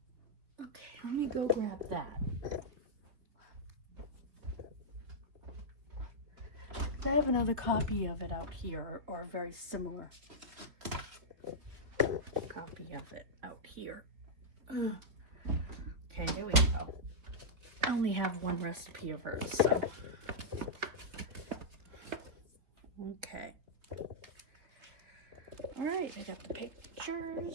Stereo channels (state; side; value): late; left; 3.6 ms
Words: Okay, let me go grab that. I have another copy of it out here, or a very similar copy of it out here. Okay, here we go. I only have one recipe of hers, so. Okay. All right, I got the